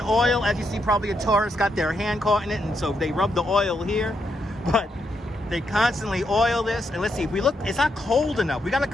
oil. As you see, probably a tourist got their hand caught in it, and so they rub the oil here. But they constantly oil this. And let's see, if we look, it's not cold enough. We got to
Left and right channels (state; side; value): normal; both; correlation 0.80